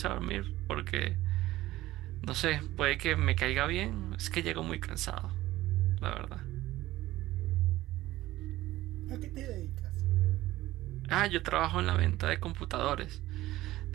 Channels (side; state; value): left; quieter; 16.4 dB